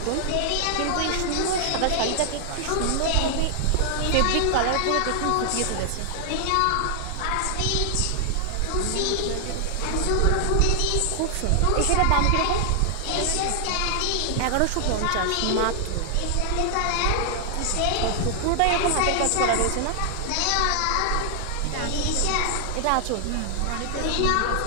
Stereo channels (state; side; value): different; both; correlation 0.00